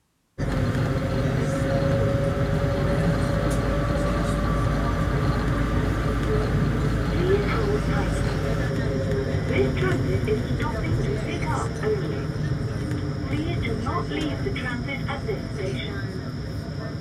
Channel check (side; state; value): both; identical; correlation 1.00